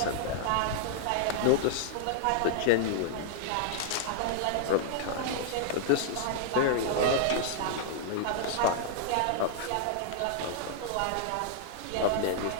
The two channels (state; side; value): different; both; correlation -0.01